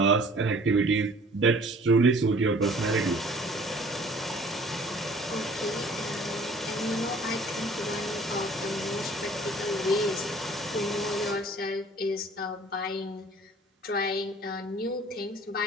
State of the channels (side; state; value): both; normal; correlation 0.52